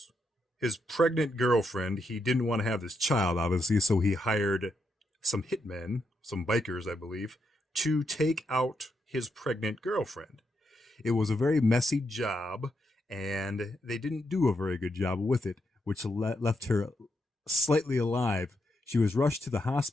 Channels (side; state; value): both; normal; correlation 0.81